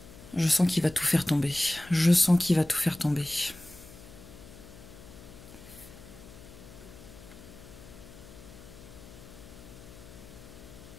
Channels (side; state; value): left; noise; hum, 18 dB below the sound